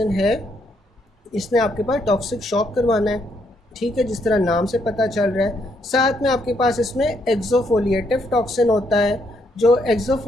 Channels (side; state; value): both; normal; correlation 0.74